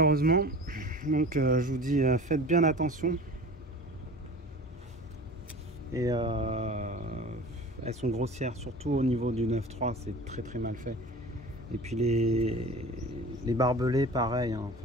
Donc je vous dis, faites bien attention. Et elles sont grossières, surtout au niveau du 9.3, c'est très très mal fait. Et puis les barbelés, pareil, hein,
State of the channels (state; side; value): normal; both; correlation 0.39